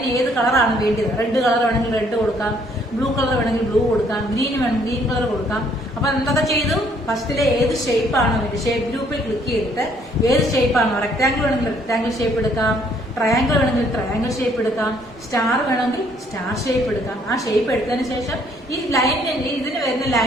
ഏത് കളറാണ് വേണ്ടത്? റെഡ് കളർ വേണമെങ്കിൽ റെഡ് കൊടുക്കാം, ബ്ലൂ കളർ വേണമെങ്കിൽ ബ്ലൂ കൊടുക്കാം, ഗ്രീൻ വേണമെങ്കിൽ ഗ്രീൻ കളർ കൊടുക്കാം. അപ്പൊ എന്തൊക്കെ ചെയ്തു? ഫസ്റ്റിലെ ഏത് ഷേപ്പ് ആണ് വേണ്ടത്, ഷേപ്പ് ഗ്രൂപ്പിൽ ക്ലിക്ക് ചെയ്തിട്ട് ഏത് ഷേപ്പ് ആണോ, റെക്ടാങ്കിൾ വേണമെങ്കിൽ റെക്ടാങ്കിൾ ഷേപ്പ് എടുക്കാം, ട്രയാങ്കിൾ വേണമെങ്കിൽ ട്രയാങ്കിൾ ഷേപ്പ് എടുക്കാം, സ്റ്റാർ വേണമെങ്കിൽ സ്റ്റാർ ഷേപ്പ് എടുക്കാം. ആ ഷേപ്പ് എടുത്തതിന് ശേഷം ഈ ലൈനിന്റെ, ഇതിന് വരുന്ന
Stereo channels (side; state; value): both; normal; correlation 0.64